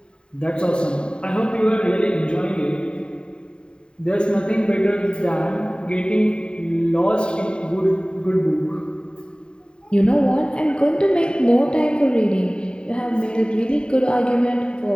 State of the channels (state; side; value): late; right; 0.050 ms